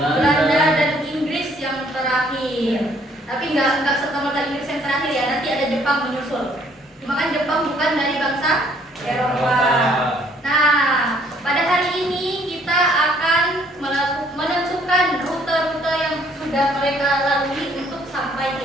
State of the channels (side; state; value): both; normal; correlation 0.63